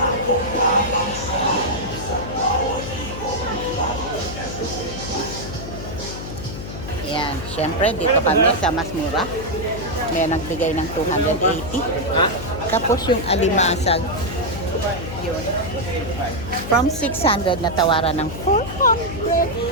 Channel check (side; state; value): left; noise; hum, 9 dB below the sound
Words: Ayan, syempre dito kami sa mas mura. May nagbigay ng 280. Tapos yung alimasag, yun. From 600 na tawaran ng